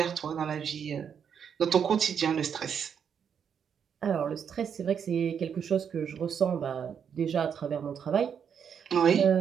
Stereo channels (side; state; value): left; quieter; 7.6 dB